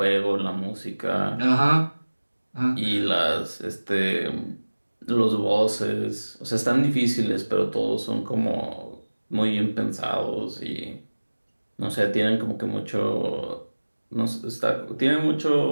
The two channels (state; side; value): inverted; both; correlation -1.00